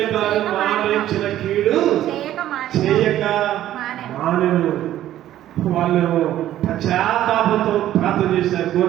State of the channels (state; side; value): quieter; left; 12.8 dB